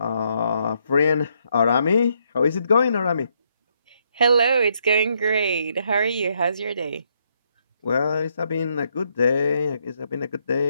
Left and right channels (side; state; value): both; inverted; correlation -0.75